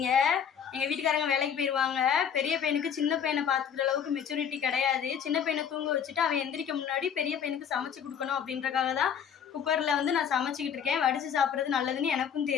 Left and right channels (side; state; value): right; quieter; 7.9 dB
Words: எங்கள் வீட்டுக்காரங்க வேலைக்கு போயிடுவாங்க. பெரிய பையனுக்கு சின்ன பையனை பார்த்துக்கிற அளவுக்கு மெச்சூரிட்டி கிடையாது. சின்ன பையனை தூங்க வச்சுட்டு அவன் எந்திரிக்க முன்னாடி பெரிய பையனுக்கு சமைச்சு கொடுக்கணும் அப்படின்றக்காக தான் குக்கரில் வந்து நான் சமைச்சிக்கிட்டு இருக்கேன். வடித்து சாப்பிட்றது நல்லதுன்னு எனக்கும்